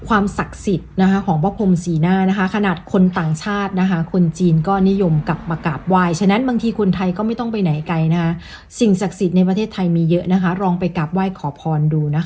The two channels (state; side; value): identical; both; correlation 1.00